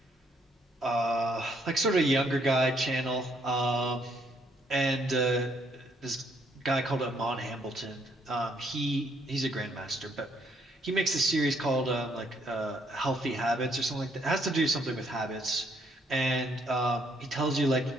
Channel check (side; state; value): both; normal; correlation 0.69